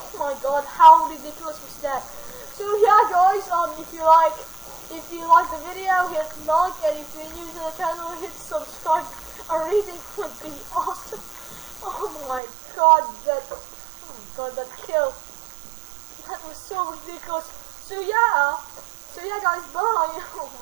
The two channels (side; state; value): left; drops out; at 12.4 s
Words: my god, how ridiculous was that? So yeah guys, if you like the video, hit like, and if you're new to the channel, hit subscribe. A rating would be awesome. Oh my god, that kill. That was so ridiculous. So yeah guys, bye. Oh